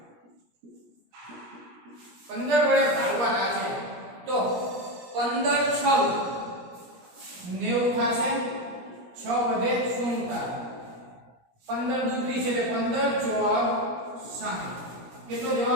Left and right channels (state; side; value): late; left; 17 ms